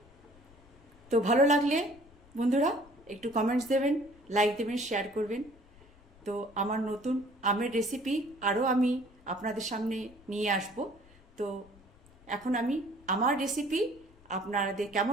তো ভালো লাগলে বন্ধুরা একটু কমেন্টস দেবেন, লাইক দেবেন, শেয়ার করবেন। তো আমার নতুন আমের রেসিপি আরও আমি আপনাদের সামনে নিয়ে আসব। তো এখন আমি আমার রেসিপি আপনাদের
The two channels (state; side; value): noise; left; rumble, 26 dB below the sound